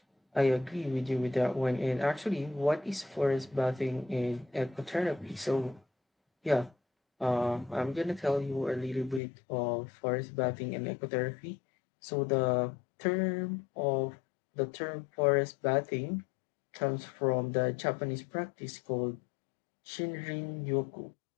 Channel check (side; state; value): right; drops out; at 9.2 s